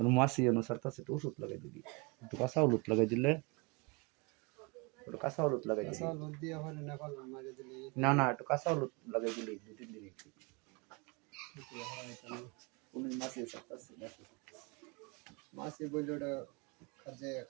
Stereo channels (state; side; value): quieter; left; 28.2 dB